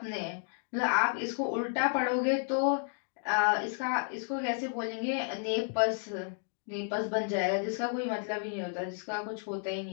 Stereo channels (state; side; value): silent; right; 56 dB below the other